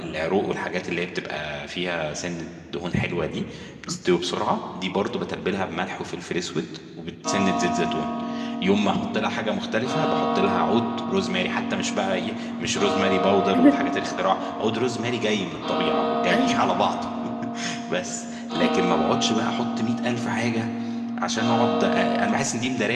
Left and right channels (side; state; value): both; identical; correlation 1.00